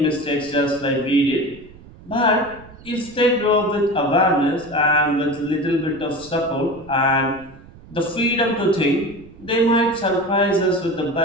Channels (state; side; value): noise; right; rumble, 21 dB below the sound